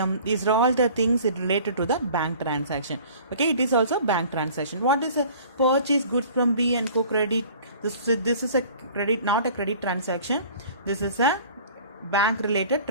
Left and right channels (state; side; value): inverted; both; correlation -0.48